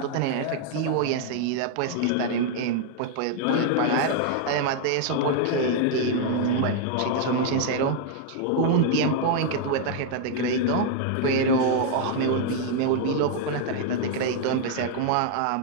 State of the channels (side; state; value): both; different; correlation 0.00